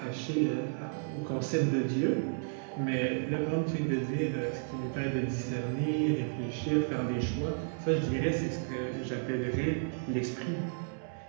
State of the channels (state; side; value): silent; left; 56 dB below the other